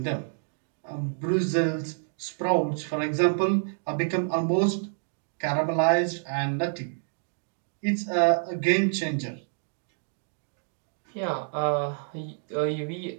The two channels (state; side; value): silent; left; digital silence